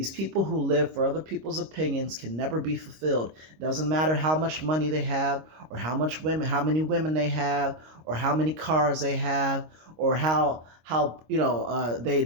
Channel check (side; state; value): left; late; 26 ms